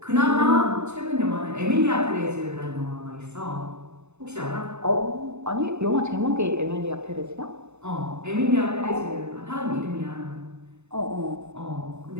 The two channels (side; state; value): left; late; 0.82 ms